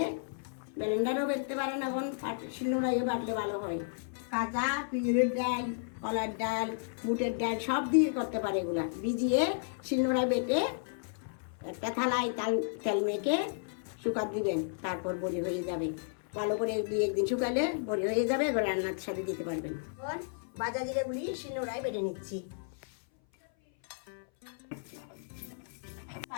ব্লেন্ডারও বেটতে পারেন, এখন শিলনোড়াইও বাটলে ভালো হয়। কাঁচা পিঁড়ের ডাল, কলার ডাল, বুটের ডাল সব দিয়ে করতে পারে। এগুলা ভিজিয়ে শিলনোড়ায় বেটে একটা থালায় তেল মেখে শুকাত দিবেন, তারপর বড়ি হয়ে যাবে। ভালো করে 2-1 দিন শুকালে বড়ি হয়ে যাবে, এবার রান্নার সাথে দিতে পারবেন। এখন ভাজা জিরাগুলি শিলনোড়ায় বেটে নিচ্ছি।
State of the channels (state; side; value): silent; right; 56 dB below the other